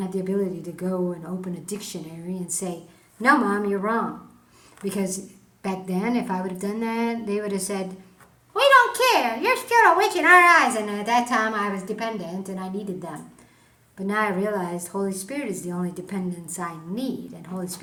have the ability to go and open a dictionary and say, no, Mom, you're wrong. Because back then, if I would have done that, they would have said, we don't care. You're still a witch in our eyes. And at that time, I was dependent and I needed them. But now I realized Holy Spirit is the only dependence I need. And Holy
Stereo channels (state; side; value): identical; both; correlation 1.00